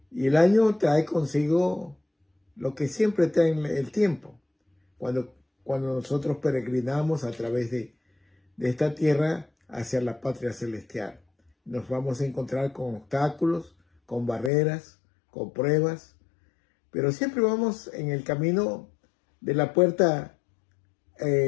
y el año trae consigo lo que siempre trae el tiempo. Cuando nosotros peregrinamos a través de esta tierra hacia la patria celestial, nos vamos a encontrar con obstáculos, con barreras, con pruebas, pero siempre vamos en el camino de la puerta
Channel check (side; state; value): right; drops out; at 14.5 s